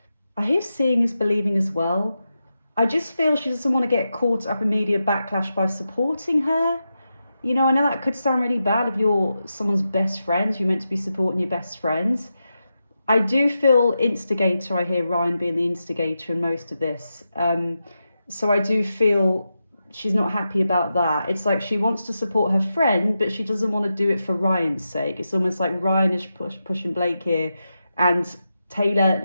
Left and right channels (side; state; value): both; inverted; correlation -0.89